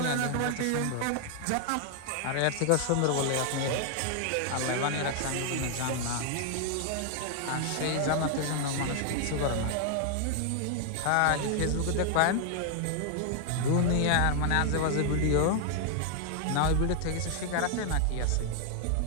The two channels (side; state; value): both; different; correlation 0.00